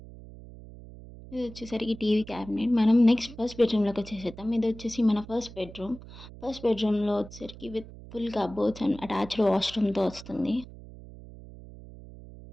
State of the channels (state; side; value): noise; right; hum, 16 dB below the sound